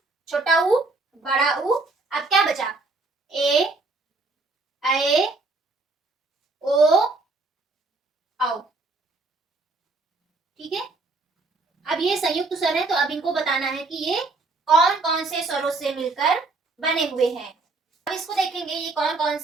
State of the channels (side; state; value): left; quieter; 3.5 dB